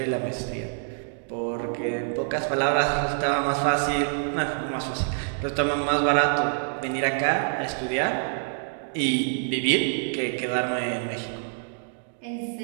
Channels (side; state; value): left; silent; digital silence